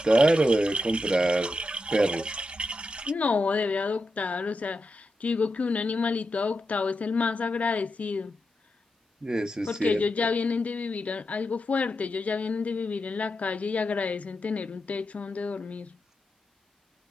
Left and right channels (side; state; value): both; normal; correlation 0.87